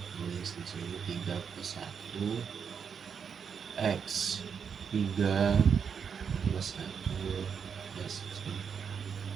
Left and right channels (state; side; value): quieter; left; 6.8 dB